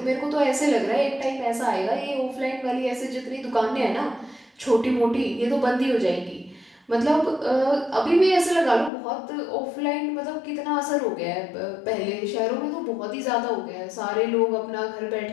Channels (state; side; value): drops out; right; at 8.9 s